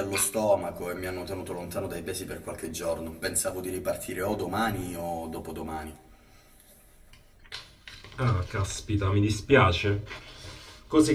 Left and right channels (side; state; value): both; identical; correlation 1.00